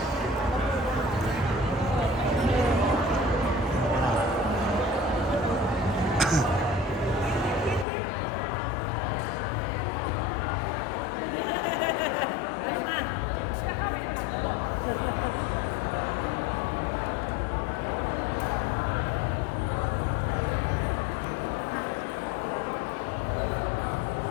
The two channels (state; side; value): drops out; right; at 7.9 s